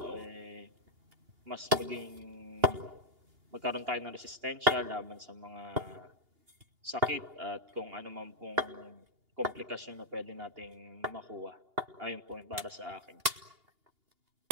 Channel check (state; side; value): late; left; 2.8 ms